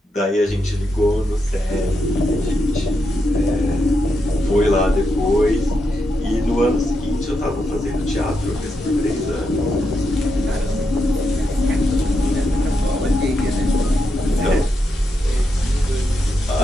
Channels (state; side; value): normal; both; correlation 0.84